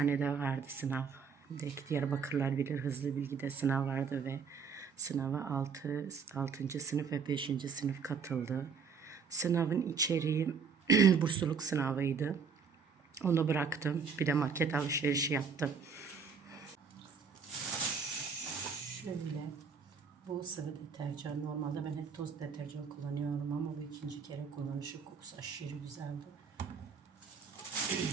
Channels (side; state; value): left; quieter; 5.9 dB